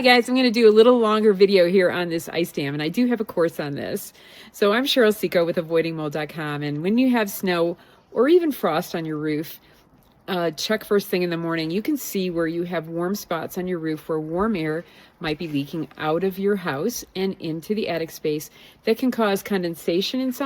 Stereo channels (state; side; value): identical; both; correlation 1.00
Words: guys, I'm going to do a little longer video here on this ice dam, and I do have a course on this. So I'm Cheryl Seco with avoidingmold.com, and when you have snow or even frost on your roof, check first thing in the morning. You can see where you have warm spots on your roof where warm air might be leaking out of your house and into the attic space. That can cause condensation in